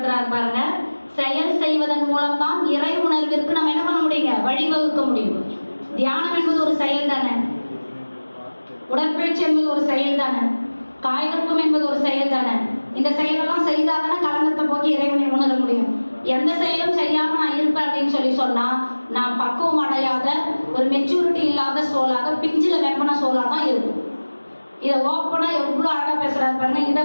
பாருங்க, செயல் செய்வதன் மூலம் தான் இறை உணர்விற்கு நம்ம என்ன பண்ண முடியுங்க, வழிவகுக்க முடியும். தியானம் என்பது ஒரு செயல் தானே, உடற்பயிற்சி என்பது ஒரு செயல் தானே, காய்கற்பம் என்பது ஒரு செயல் தானே. இந்த செயலெல்லாம் செய்தாதானே களங்கத்தை போக்கி இறைவனை உணர முடியும். எந்த செயலும் செய்யாம நான் இருப்பேன் அப்படின்னு சொன்னா நான் பக்குவம் அடையாத ஒரு மெச்சூரிட்டி இல்லாத சோலாக, பிஞ்சில வெப்பன சோலா தான் இருக்கும். இதை ஓப்பனா எவ்வளவு அழகா பேசுறாரு பாருங்க. இதை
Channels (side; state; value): both; inverted; correlation -1.00